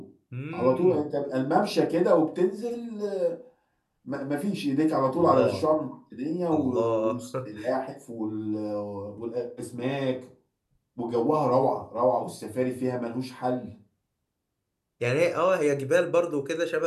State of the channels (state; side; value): identical; both; correlation 1.00